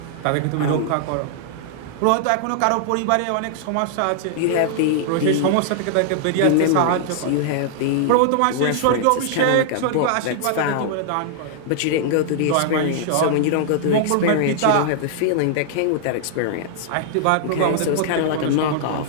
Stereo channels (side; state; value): both; different; correlation -0.01